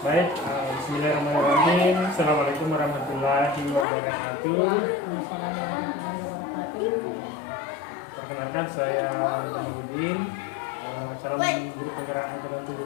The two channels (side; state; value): right; drops out; at 3.9 s